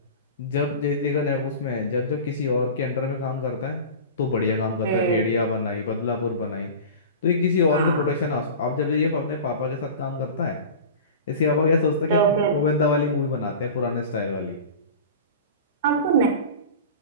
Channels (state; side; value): inverted; both; correlation -0.33